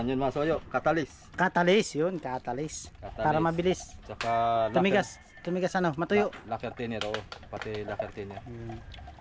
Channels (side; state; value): both; identical; correlation 1.00